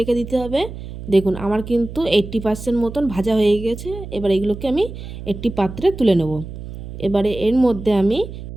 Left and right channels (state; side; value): noise; right; hum, 11 dB below the sound